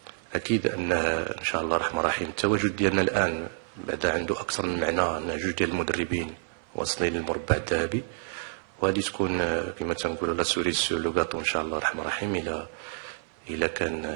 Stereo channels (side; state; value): left; silent; 57 dB below the other